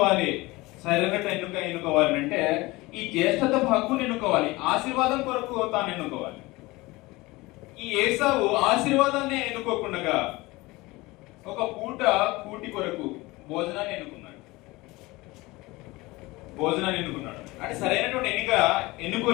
సరైన ఎన్నుకోవాలి అంటే ఈ జ్యేష్ఠత హక్కుని ఎన్నుకోవాలి, ఆశీర్వాదం కొరకు తాను ఎన్నుకోవాలి. ఈ ఏసావు ఆశీర్వాదాన్ని ఎన్నుకోకుండా ఒక పూట కూటి కొరకు భోజనాన్ని ఎన్నుకున్నాడు. అంటే సరైనటువంటి ఎన్నిక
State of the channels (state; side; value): quieter; right; 21.5 dB